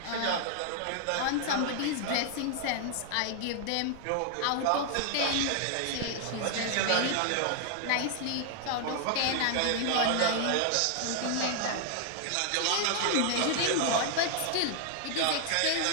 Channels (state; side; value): different; both; correlation 0.00